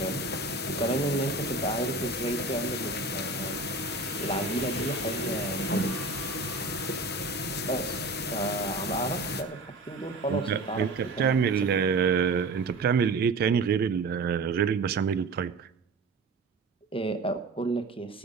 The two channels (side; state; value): left; quieter; 3.3 dB